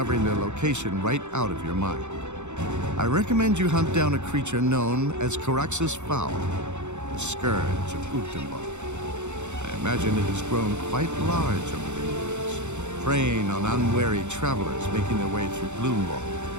their location right out of your mind. I recommend you hunt down a creature known as Caraxus Foul, the scourge of Ugdenbog. I imagine it has grown quite large over the years, preying on unwary travelers making their way through Gloomwald.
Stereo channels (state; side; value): late; left; 0.83 ms